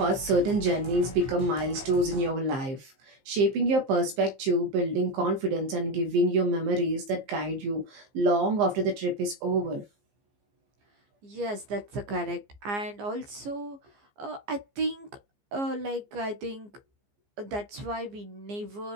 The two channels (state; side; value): late; left; 15 ms